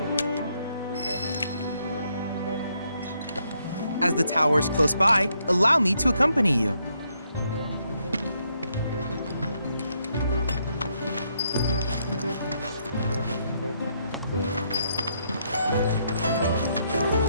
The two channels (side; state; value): both; inverted; correlation -0.75